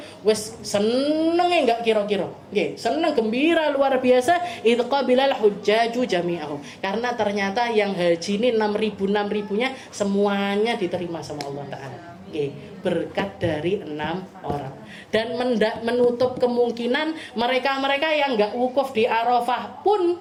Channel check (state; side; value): identical; both; correlation 1.00